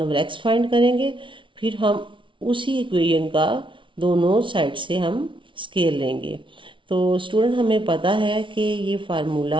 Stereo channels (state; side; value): late; left; 0.25 ms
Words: over x find करेंगे, फिर हम उसी इक्वेशन का दोनों साइड से हम स्क्वायर लेंगे। तो स्टूडेंट हमें पता है कि ये